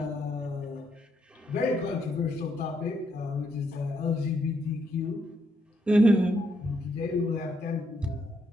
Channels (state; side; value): normal; both; correlation 0.76